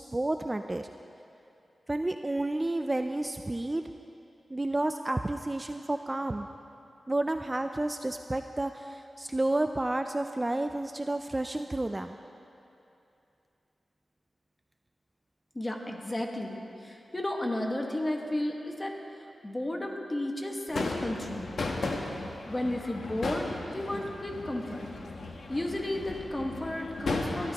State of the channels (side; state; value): both; normal; correlation 0.96